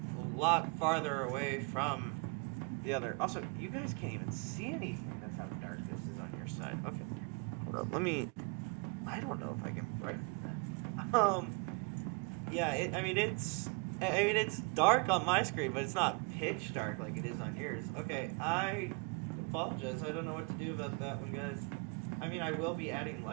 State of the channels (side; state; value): left; quieter; 34.3 dB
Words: a lot farther away from the other. Also, you guys can't even see anything. That's how dark this is on your side. Okay. Hold up. Let me... I don't know if I can brighten that. Yeah, it's dark on my screen, but it's not pitch dark like it is on yours. Okay, I apologize. I don't know what to do about that one, guys. I mean, I will be adding